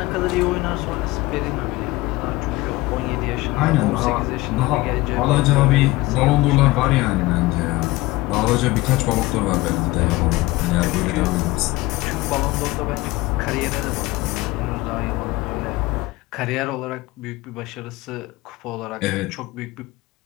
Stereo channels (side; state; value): right; quieter; 20.1 dB